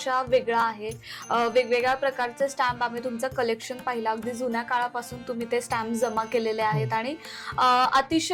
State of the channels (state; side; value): identical; both; correlation 1.00